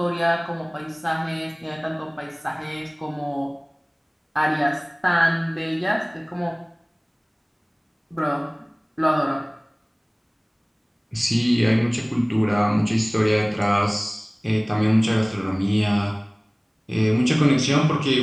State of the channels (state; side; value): identical; both; correlation 1.00